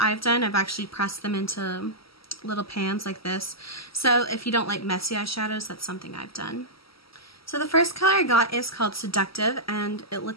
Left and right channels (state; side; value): late; right; 0.75 ms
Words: I've done, I've actually pressed them into little pans like this. So if you don't like messy eyeshadows, that's something I've done. So the first color I got is called Seductive and it